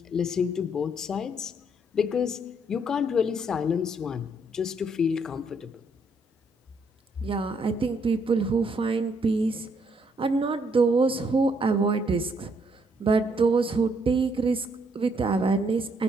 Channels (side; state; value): both; normal; correlation 0.71